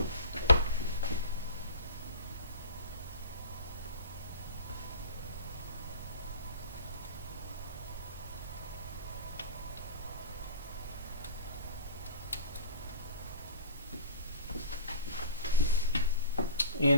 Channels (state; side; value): inverted; both; correlation -0.40